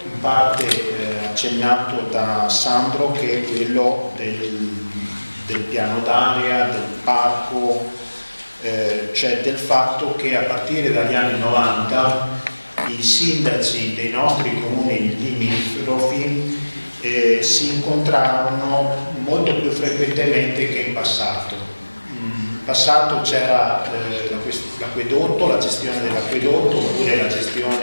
in parte accennato da Sandro, che è quello del piano d'area, del parco, cioè del fatto che a partire dagli anni 90 i sindaci dei nostri comuni limitrofi si incontrarono molto più frequentemente che in passato. In passato c'era l'acquedotto, la gestione dell'acquedotto oppure la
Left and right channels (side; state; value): both; inverted; correlation -1.00